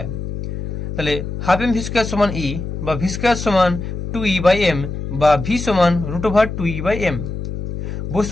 তাহলে ½ m v² সমান E, বা v² সমান 2e/m, বা v সমান √2e/m।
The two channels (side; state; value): left; noise; hum, 6 dB below the sound